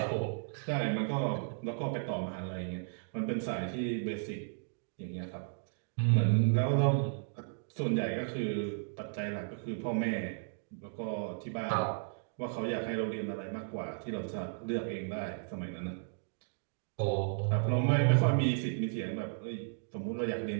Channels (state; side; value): silent; left; digital silence